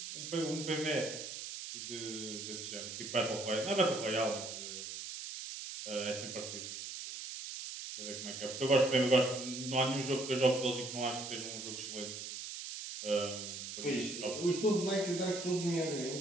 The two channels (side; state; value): right; noise; hiss, 7 dB below the sound